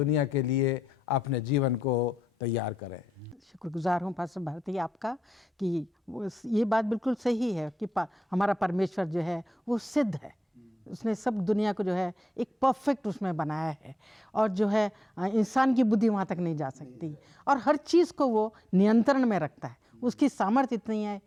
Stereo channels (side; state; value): both; normal; correlation 0.86